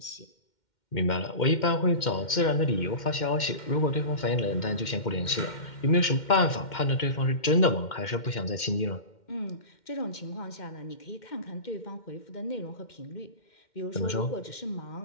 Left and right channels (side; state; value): right; late; 2.1 ms